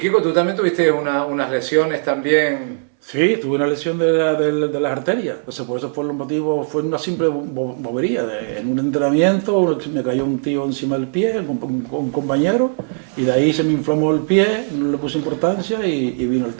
tú también tuviste unas lesiones también. Sí, tuve una lesión de las arterias, entonces por eso fue el motivo, fue una simple bobería. En un entrenamiento me cayó un tío encima del pie, un compañero, y de ahí se me inflamó el pie, no le puse importancia y vino el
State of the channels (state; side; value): silent; left; 67 dB below the other